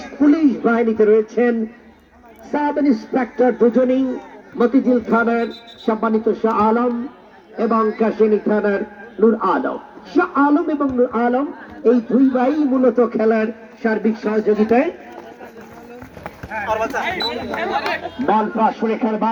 পুলিশ বাহিনীতে রয়েছেন সাব ইন্সপেক্টর দুজনই, মতিঝিল থানার সম্মানিত শাহ আলম এবং কাশিয়ানী থানার নূর আলম। শাহ আলম এবং নূর আলম এই দুই ভাই মূলত খেলার সার্বিক সহযোগিতায়। বল পাস রেখার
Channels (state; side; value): identical; both; correlation 1.00